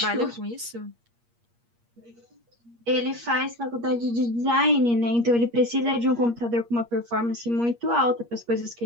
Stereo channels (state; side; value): late; left; 8.5 ms